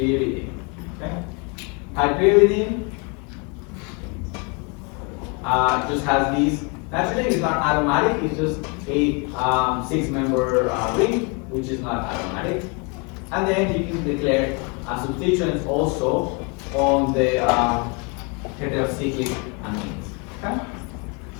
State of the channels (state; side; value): quieter; right; 32.0 dB